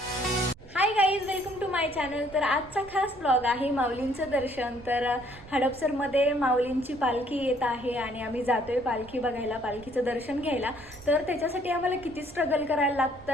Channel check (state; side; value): noise; right; rumble, 21 dB below the sound